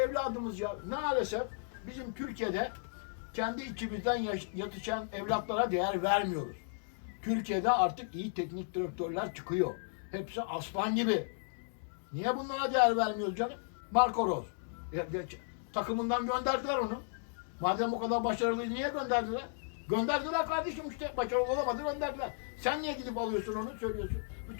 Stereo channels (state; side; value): silent; right; digital silence